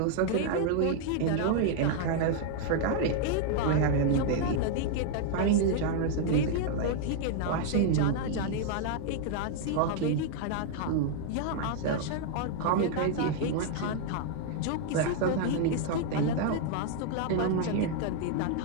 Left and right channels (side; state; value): both; different; correlation 0.00